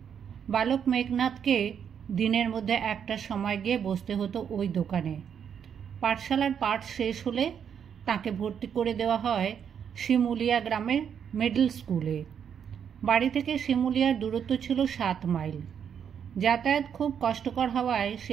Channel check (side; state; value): left; quieter; 8.0 dB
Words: বালক মেঘনাদকে দিনের মধ্যে একটা সময় গিয়ে বসতে হতো ওই দোকানে। পাঠশালার পাঠ শেষ হলে তাকে ভর্তি করে দেওয়া হয় শিমুলিয়া গ্রামের মিডল স্কুলে। বাড়ি থেকে শিমুলিয়ার দূরত্ব ছিল 7 মাইল। যাতায়াত খুব কষ্টকর হওয়ায়